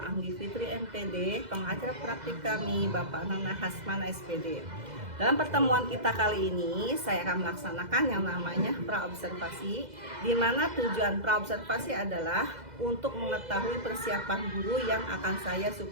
Anggi Fitri MPD, pengajar praktik kami Bapak Nana Hasmana SPD. Dalam pertemuan kita kali ini, saya akan melaksanakan yang namanya praobservasi, di mana tujuan praobservasi adalah untuk mengetahui persiapan guru yang akan saya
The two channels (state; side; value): late; left; 2.0 ms